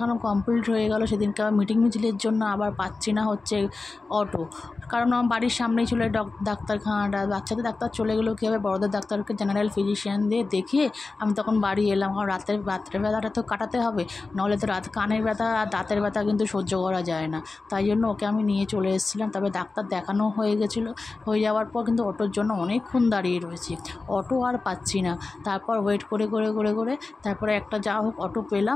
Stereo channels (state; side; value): quieter; right; 3.8 dB